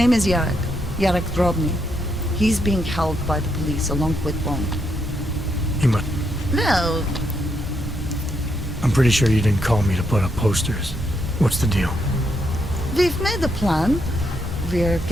is Yarek. Yarek Drobny. He's being held by the police along with Bond. You must... Well, I'm pretty sure you didn't call me to put up posters. What's the deal? We've made a plan. We're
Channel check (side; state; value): both; normal; correlation 0.79